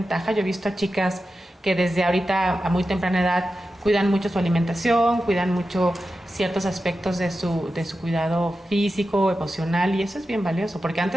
Yo he visto a chicas que desde ahorita a muy temprana edad cuidan mucho su alimentación, cuidan mucho ciertos aspectos de su cuidado físico, emocional, y eso es bien valioso, porque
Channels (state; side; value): normal; both; correlation 0.92